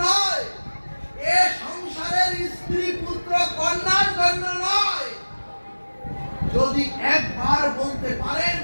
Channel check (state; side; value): inverted; both; correlation -1.00